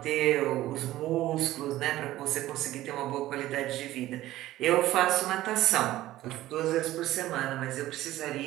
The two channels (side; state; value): left; quieter; 15.3 dB